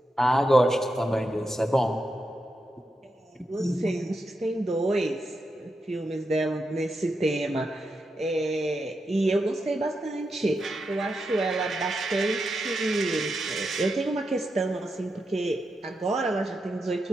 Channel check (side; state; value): both; normal; correlation 0.86